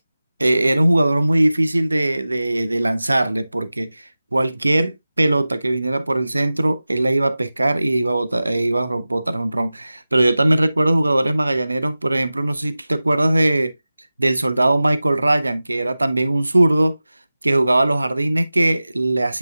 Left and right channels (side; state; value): both; inverted; correlation -0.96